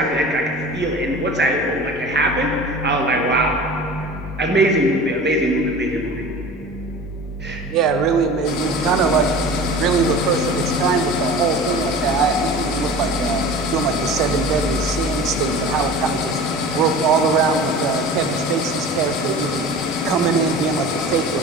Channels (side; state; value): both; normal; correlation 0.38